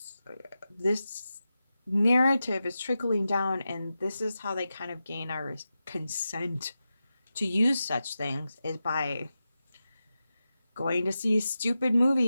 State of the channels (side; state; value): both; inverted; correlation -0.92